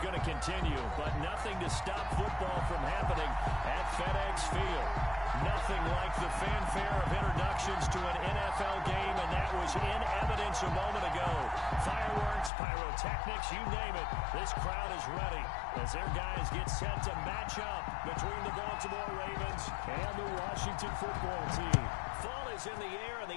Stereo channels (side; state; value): right; drops out; at 12.5 s